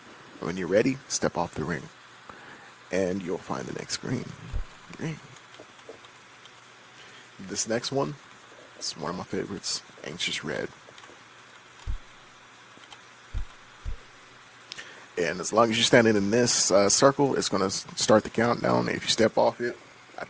When you're ready, step off the ring, and you'll find the next green. This next one, it's one of my favorites, Anxious Red. And as long as you're standing in this circle, it's going to start the countdown. If you step off it, I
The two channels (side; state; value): both; identical; correlation 1.00